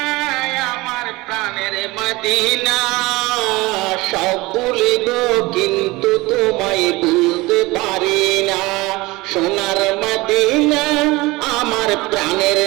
আমার প্রাণের মদিনা, সব ভুলিব কিন্তু তোমায় ভুলতে পারি না। সোনার মদিনা আমার প্রাণের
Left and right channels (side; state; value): left; quieter; 21.6 dB